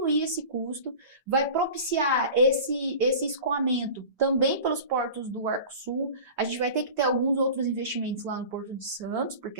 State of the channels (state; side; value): inverted; both; correlation -0.37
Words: esse custo, vai propiciar esse escoamento também pelos portos do Arco Sul. A gente vai ter que ter alguns outros investimentos lá no Porto de Santos, porque